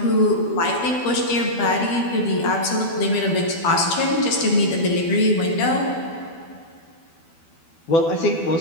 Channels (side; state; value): right; late; 12 ms